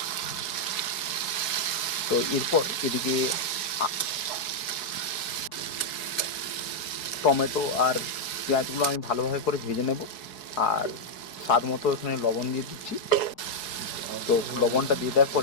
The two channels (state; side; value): late; right; 4.7 ms